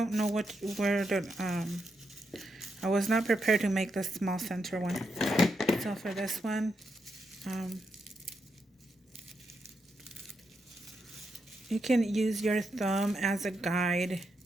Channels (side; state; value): both; normal; correlation 0.83